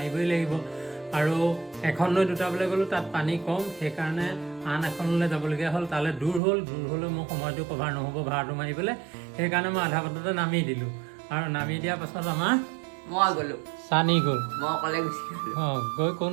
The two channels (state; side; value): drops out; left; at 6.4 s